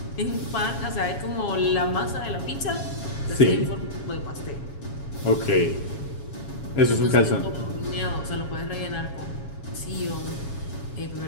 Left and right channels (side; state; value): right; late; 7.2 ms